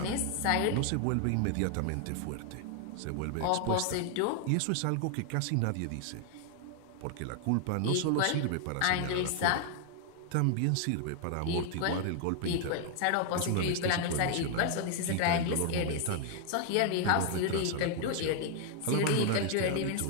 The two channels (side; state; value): both; different; correlation 0.00